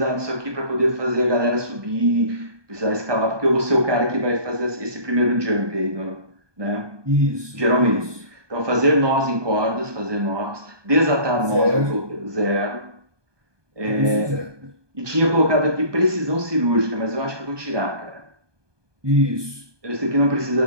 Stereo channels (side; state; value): left; late; 1.2 ms